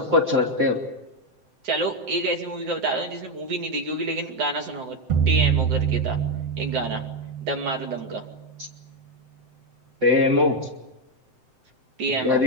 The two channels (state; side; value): late; left; 7.7 ms